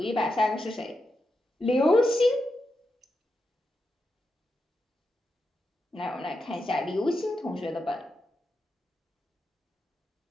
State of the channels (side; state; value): both; normal; correlation 0.87